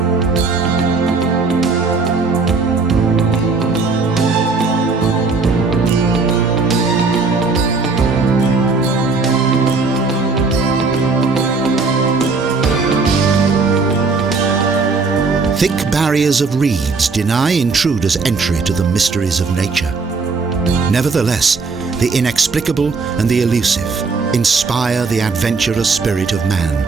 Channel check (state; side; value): quieter; left; 4.2 dB